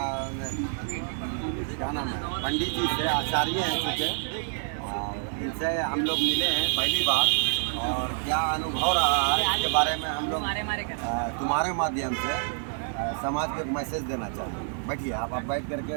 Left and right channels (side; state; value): left; silent; digital silence